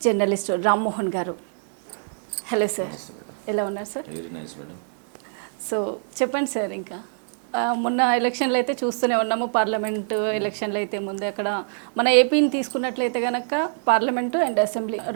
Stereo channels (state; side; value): silent; left; 58 dB below the other